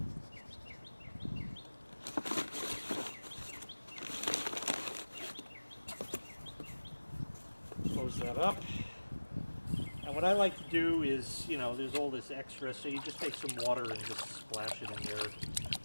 Close that up. And what I like to do is, you know, there's all this extra, so you just take some water and just splash it in there,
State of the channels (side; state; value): both; inverted; correlation -1.00